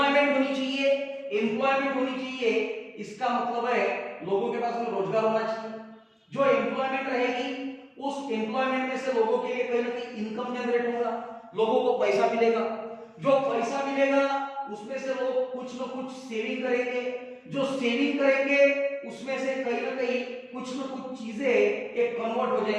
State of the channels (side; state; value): both; identical; correlation 1.00